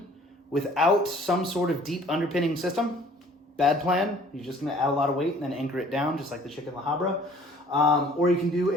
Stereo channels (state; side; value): normal; both; correlation 0.54